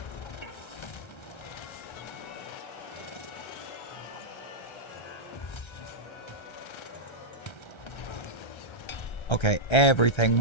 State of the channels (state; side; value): late; right; 1.3 ms